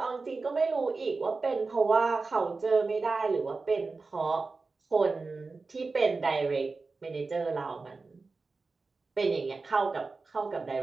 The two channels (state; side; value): quieter; left; 4.0 dB